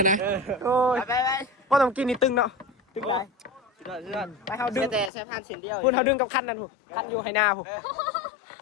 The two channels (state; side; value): drops out; right; at 5.1 s